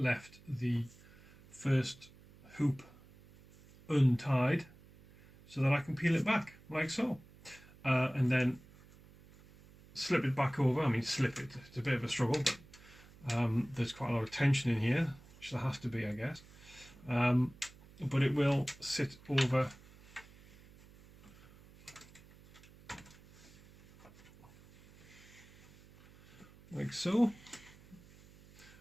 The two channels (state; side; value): noise; right; hum, 23 dB below the sound